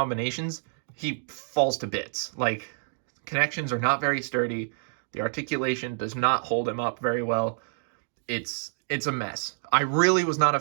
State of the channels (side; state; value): left; silent; digital silence